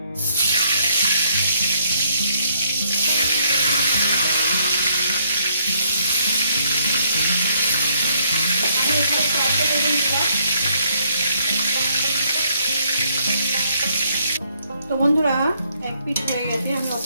তো বন্ধুরা এক পিঠ হয়ে গেছে, আমি অত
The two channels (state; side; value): inverted; both; correlation -0.69